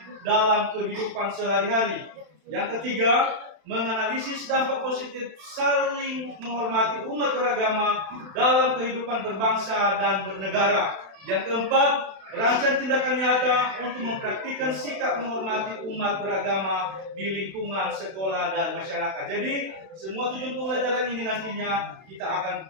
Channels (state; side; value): late; left; 31 ms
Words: dalam kehidupan sehari-hari. Yang ketiga, menganalisis dampak positif saling menghormati umat beragama dalam kehidupan berbangsa dan bernegara. Yang keempat, merancang tindakan nyata untuk mempraktikkan sikap menghormati umat beragama di lingkungan sekolah dan masyarakat. Jadi, semua tujuan pembelajaran ini nantinya kita akan